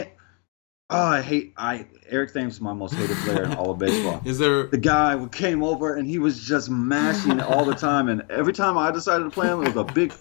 Eric Thames is my most hated player in all of baseball. The guy who came over and he was just mashing all the time, and every time I decided to play him, it was a big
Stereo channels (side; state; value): right; quieter; 36.1 dB